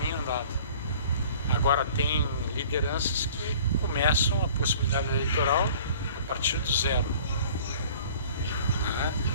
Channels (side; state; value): both; inverted; correlation -0.49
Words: andado. Agora tem lideranças que começam a possibilidade eleitoral a partir do 0. Né?